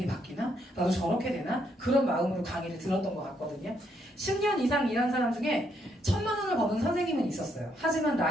바뀌나? 나도 저렇게 되나? 그런 마음으로 강의를 들었던 것 같거든요. 10년 이상 일한 사람 중에 1,000만 원을 버는 선생님은 있었어요. 하지만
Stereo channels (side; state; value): both; normal; correlation 0.74